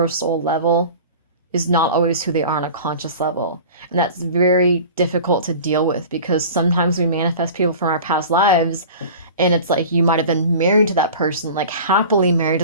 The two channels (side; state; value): both; inverted; correlation -0.38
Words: soul level is not always who they are on a conscious level. And that's very difficult to deal with because sometimes we manifest people from our past lives and it's like you might have been married to that person, like happily married